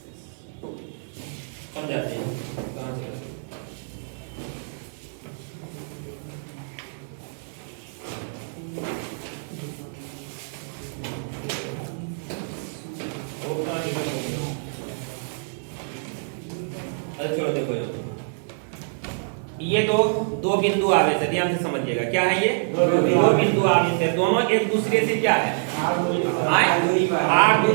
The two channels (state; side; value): silent; left; digital silence